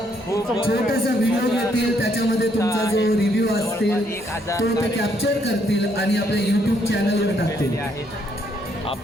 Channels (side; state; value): both; normal; correlation 0.71